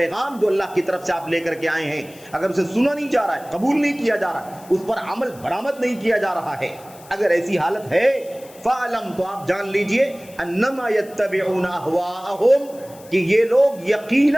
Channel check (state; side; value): noise; left; hiss, 23 dB below the sound